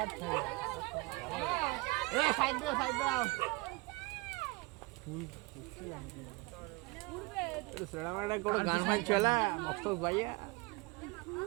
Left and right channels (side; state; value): left; quieter; 24.7 dB